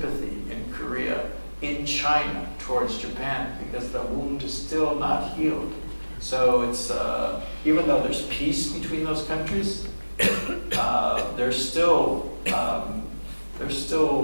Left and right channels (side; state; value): both; inverted; correlation -1.00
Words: in Korea, in China, towards Japan, because the wound is still not healed. So it's, even though there's peace between those countries, there's still there's